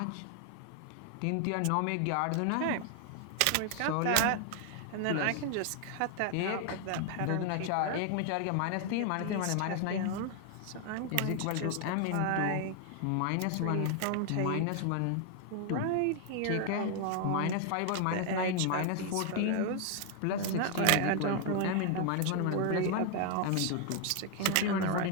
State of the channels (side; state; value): both; different; correlation 0.00